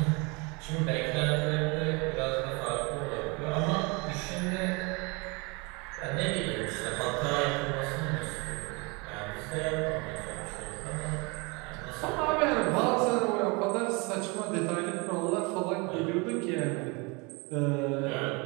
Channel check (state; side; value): quieter; left; 28.6 dB